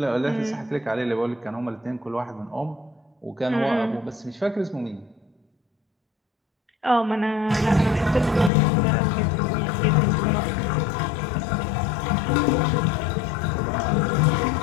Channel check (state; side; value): drops out; right; at 8.5 s